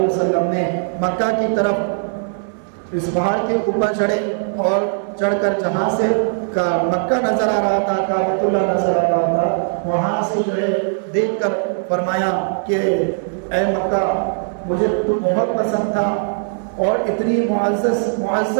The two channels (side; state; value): left; silent; 66 dB below the other